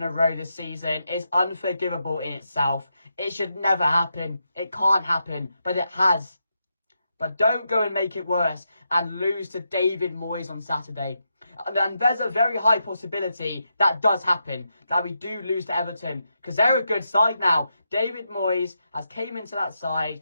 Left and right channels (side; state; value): both; inverted; correlation -0.84